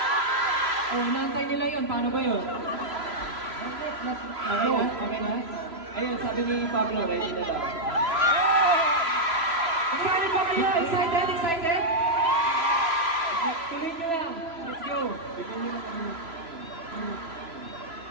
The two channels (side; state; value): left; late; 3.0 ms